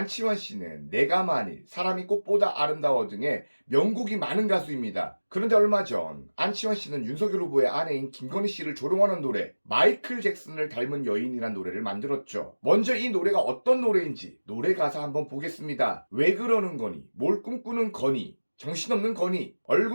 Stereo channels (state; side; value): inverted; both; correlation -1.00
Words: 씨는 내가 만일, 사람이 꽃보다 아름다워 등의 명곡이 많은 가수입니다. 그런데 얼마 전 안치환 씨는 윤석열 후보의 아내인 김건희 씨를 조롱하는 노래 마이클 잭슨을 닮은 여인이란 노래를 만들었죠. 먼저 이 노래가 어떤 노래인지 노래 가사 한번 보겠습니다. 왜 그러는 거니, 뭘 꿈꾸는 거니, 정신없는 거니,